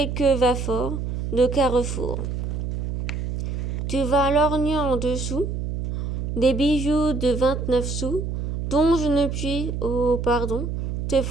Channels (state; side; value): noise; right; hum, 3 dB below the sound